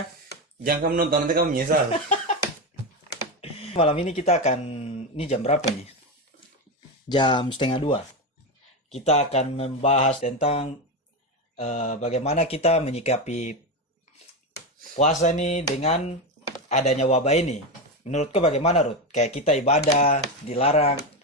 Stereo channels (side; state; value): both; normal; correlation 0.14